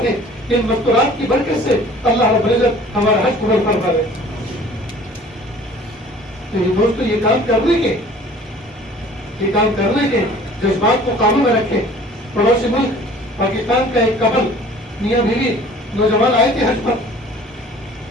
ہیں, ان مستورات کی برکت سے اللہ رب العزت ہمارا حج قبول فرما دے. تو یہ دوستو یہ کام کرنے کے جذبات کو قابو میں رکھیں. پڑوسی ملک پاکستان کا ایک کپل میاں بیوی نوجوان آئے تھے حج پر.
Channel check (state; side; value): normal; both; correlation 0.50